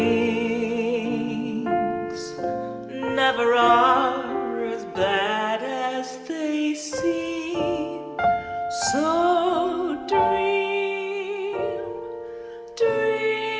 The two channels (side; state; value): both; identical; correlation 1.00